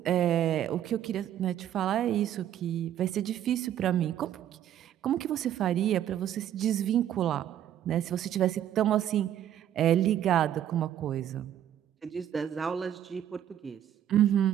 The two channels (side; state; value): left; quieter; 10.9 dB